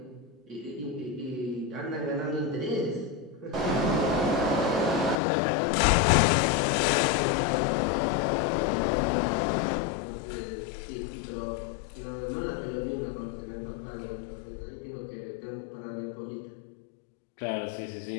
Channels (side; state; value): right; drops out; at 5.2 s